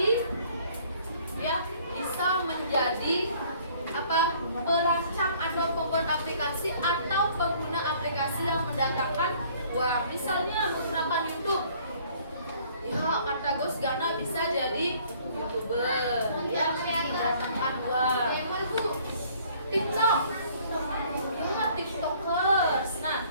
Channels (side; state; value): both; inverted; correlation -0.58